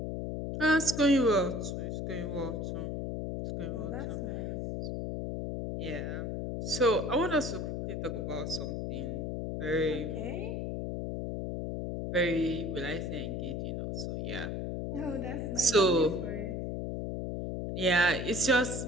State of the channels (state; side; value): noise; left; hum, 3 dB below the sound